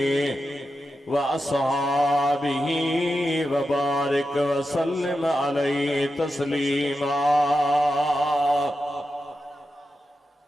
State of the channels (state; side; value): normal; both; correlation 0.89